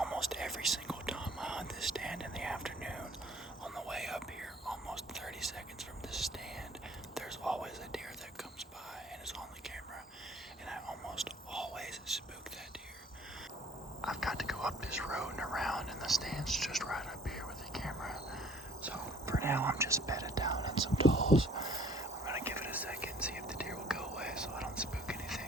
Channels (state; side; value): normal; both; correlation 0.56